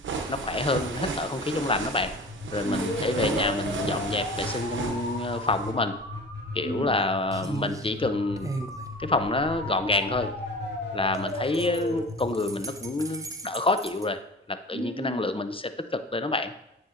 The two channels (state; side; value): normal; both; correlation 0.38